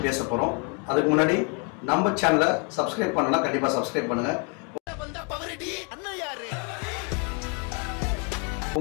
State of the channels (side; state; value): right; quieter; 36.7 dB